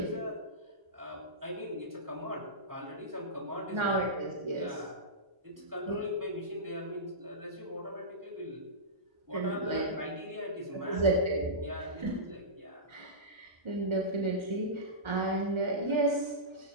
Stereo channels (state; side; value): late; left; 1.4 ms